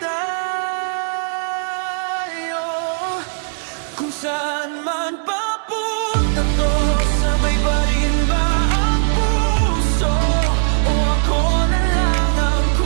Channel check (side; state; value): left; silent; digital silence